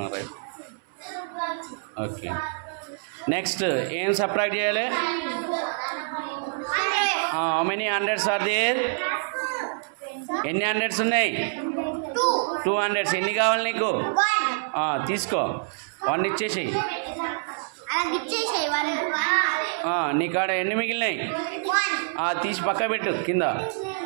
రైట్ ఓకే నెక్స్ట్ ఏం సబ్ట్రాక్ట్ చేయాలి how many hundreds are there ఎన్ని హండ్రెడ్స్ ఉన్నాయి 200 ఎన్ని కావాలి నీకు తీసుకో 1 ఇచ్చేసి నీ కాడ ఎన్ని మిగిలినాయి తీసి పక్క పెట్టు కింద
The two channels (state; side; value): silent; left; 61 dB below the other